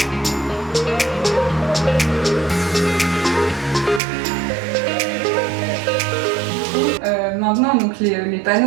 Maintenant, donc les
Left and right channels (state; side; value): drops out; left; at 4.0 s